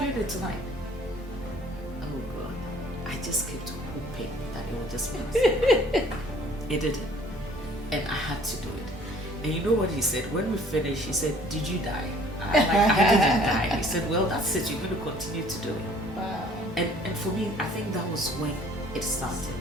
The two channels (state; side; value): normal; both; correlation 0.55